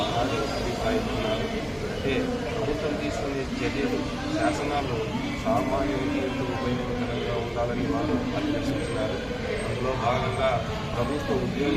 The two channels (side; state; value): both; identical; correlation 1.00